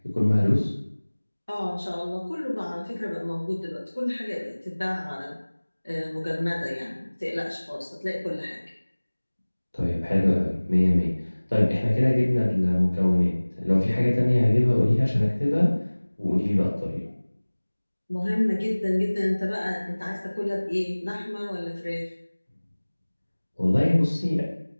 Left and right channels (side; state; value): both; inverted; correlation -1.00